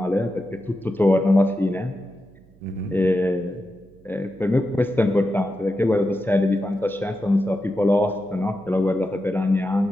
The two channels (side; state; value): right; noise; hum, 28 dB below the sound